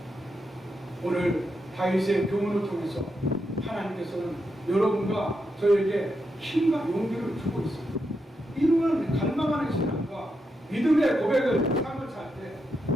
오늘 다윗의 교훈을 통해서 하나님께서는 여러분과 저에게 힘과 용기를 주고 있습니다. 이루는 갈망하는 신앙과 믿음의 고백을 삶을 살 때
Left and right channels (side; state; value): both; normal; correlation 0.84